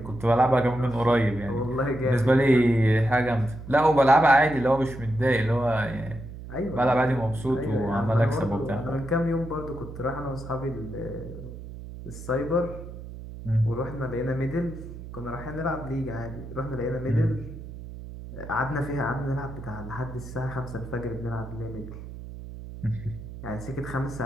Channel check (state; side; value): noise; right; hum, 12 dB below the sound